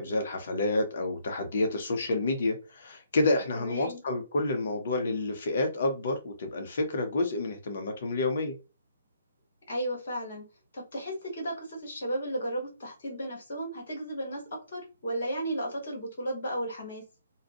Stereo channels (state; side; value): inverted; both; correlation -0.71